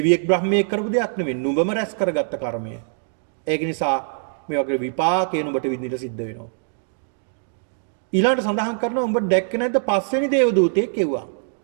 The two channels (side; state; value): left; silent; 64 dB below the other